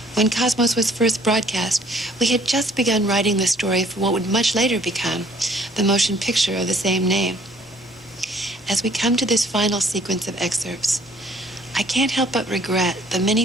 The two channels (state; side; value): normal; both; correlation 0.59